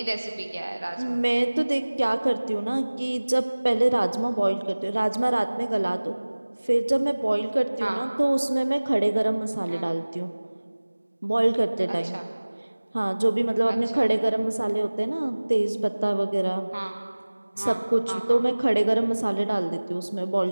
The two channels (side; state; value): both; inverted; correlation -1.00